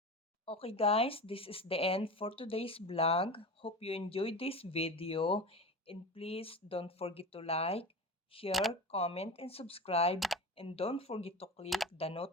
Okay guys, this is the end for today's vlog. Hope you enjoyed this video and please don't forget to like, share, comment, and subscribe, and don't forget to click the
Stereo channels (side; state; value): both; normal; correlation 0.29